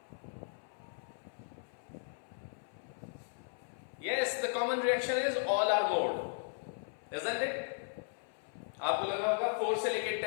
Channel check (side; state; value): right; silent; 53 dB below the other